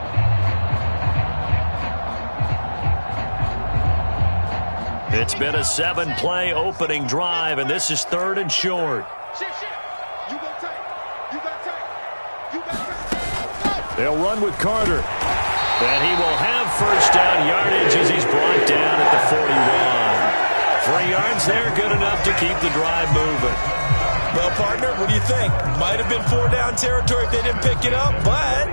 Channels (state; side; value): inverted; both; correlation -1.00